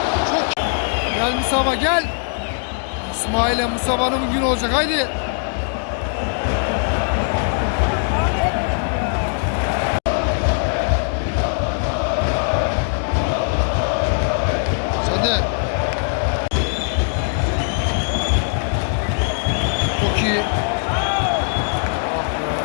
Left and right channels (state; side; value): silent; right; 66 dB below the other